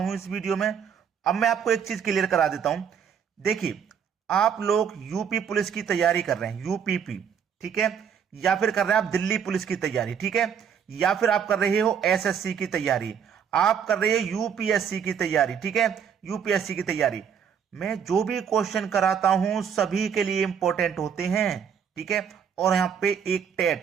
इस वीडियो में। अब मैं आपको एक चीज क्लियर करा देता हूं। देखिए, आप लोग यूपी पुलिस की तैयारी कर रहे हैं, यूपीपी, ठीक है, या फिर कर रहे हैं आप दिल्ली पुलिस की तैयारी, ठीक है, या फिर आप कर रहे हो एसएससी की तैयारी, आप कर रहे हो यूपीएससी की तैयारी, ठीक है, यूपीएससी की तैयारी। मैं जो भी क्वेश्चन कराता हूं सभी के लिए इंपॉर्टेंट होते हैं, ठीक है। और यहां पे एक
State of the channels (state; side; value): quieter; left; 7.7 dB